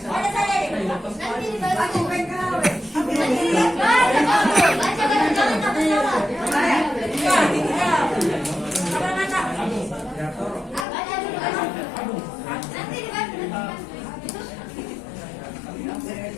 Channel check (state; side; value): drops out; right; at 10.9 s